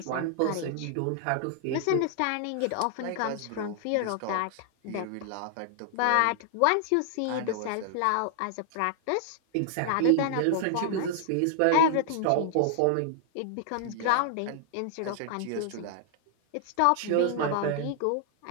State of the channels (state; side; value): different; both; correlation -0.01